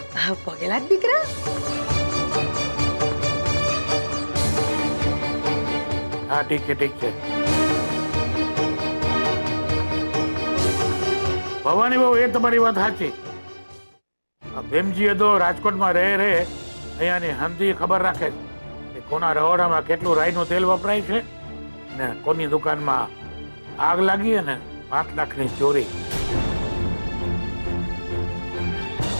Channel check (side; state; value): both; inverted; correlation -1.00